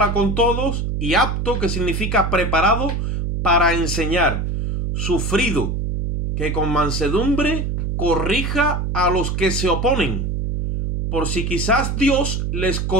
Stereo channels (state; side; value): noise; right; hum, 1 dB below the sound